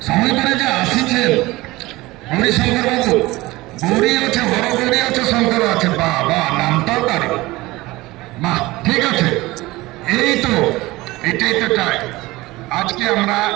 সময় করে যে আসিছেন গৌরী শঙ্কর বাবু। গৌরী আছে, বড় গৌরী আছে, শঙ্কর আছে, বা নামটাও তার মা। ঠিক আছে, এই তো এটাই তো চাই। আজকে আমরা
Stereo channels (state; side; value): quieter; left; 19.9 dB